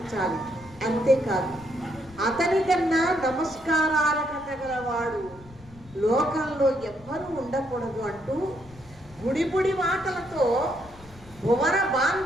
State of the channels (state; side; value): noise; left; rumble, 22 dB below the sound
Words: అంతేకాదు అతని కన్నా నమస్కారాలకు తగలవాడు లోకంలో ఎవ్వరూ ఉండకూడదు అంటూ గుడిపుడి మాటలతో భువన